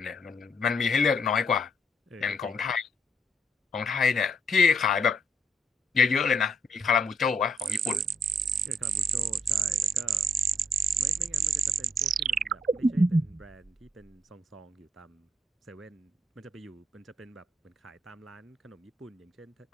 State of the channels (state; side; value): normal; both; correlation 0.73